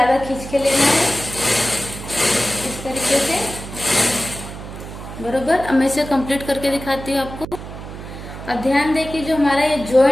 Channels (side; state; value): right; noise; hum, 11 dB below the sound